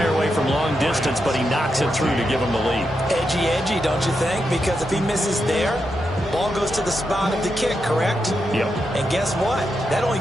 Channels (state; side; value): normal; both; correlation 0.85